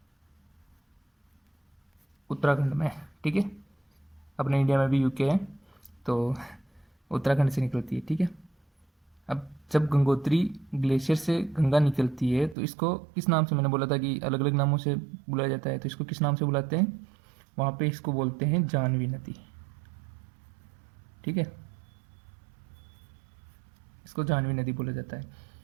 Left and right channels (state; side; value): drops out; left; at 12.6 s